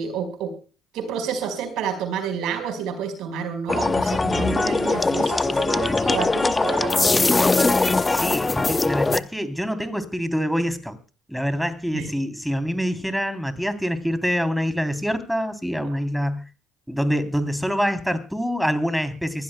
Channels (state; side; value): normal; both; correlation 0.91